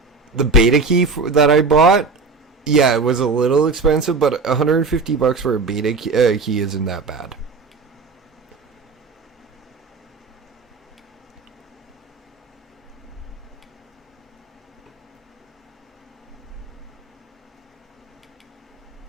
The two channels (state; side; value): quieter; left; 4.2 dB